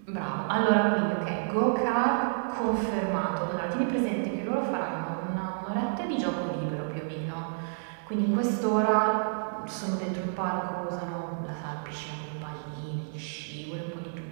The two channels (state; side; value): silent; left; digital silence